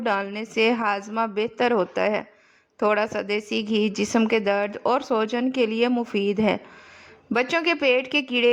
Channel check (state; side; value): identical; both; correlation 1.00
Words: سے ہاضمہ بہتر ہوتا ہے۔ تھوڑا سا دیسی گھی جسم کے درد اور سوجن کے لیے مفید ہے۔ بچوں کے پیٹ کے